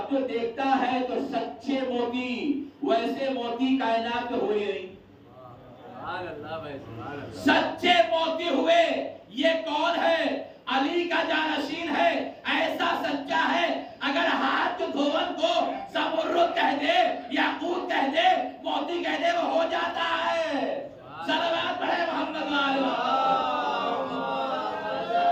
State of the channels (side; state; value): both; identical; correlation 1.00